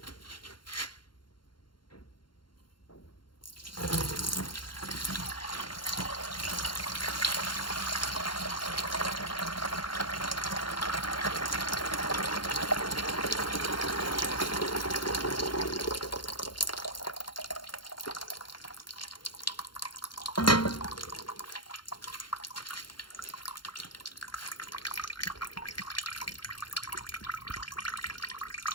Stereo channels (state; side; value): late; right; 0.72 ms